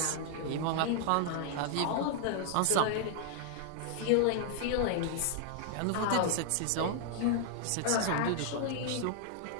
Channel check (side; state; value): both; different; correlation 0.00